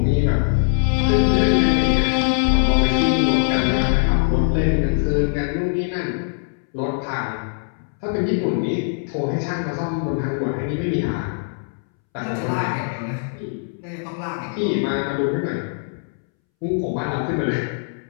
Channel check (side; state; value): right; silent; 65 dB below the other